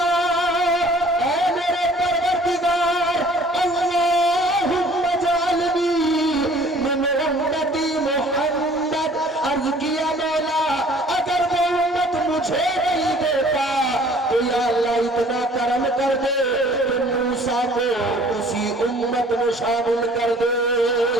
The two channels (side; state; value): both; normal; correlation 0.53